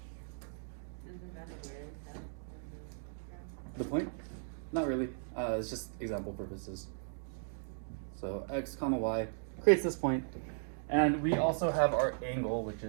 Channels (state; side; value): silent; left; digital silence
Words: The point? Not really. It's just example purposes. So x comma y creates this point, and we also have our angle, which